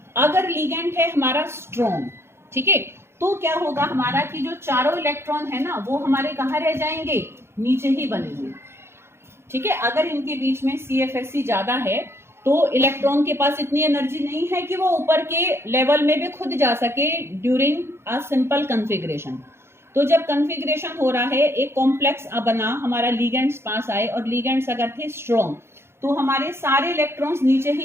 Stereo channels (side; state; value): left; late; 0.12 ms